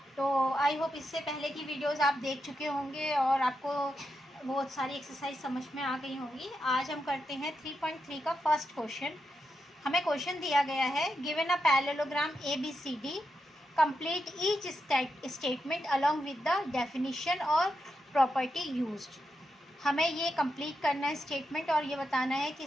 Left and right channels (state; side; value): normal; both; correlation 0.86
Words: तो आई होप इससे पहले की वीडियोस आप देख चुके होंगे और आपको बहुत सारी एक्सरसाइज समझ में आ गई होंगी। आज हम करते हैं 3.3 का फर्स्ट क्वेश्चन। हमें क्वेश्चन दिया गया है, given a parallelogram ABCD, complete each statement along with the definition और प्रॉपर्टी यूज्ड। हमें ये कंप्लीट करना है स्टेटमेंट और ये बताना है कि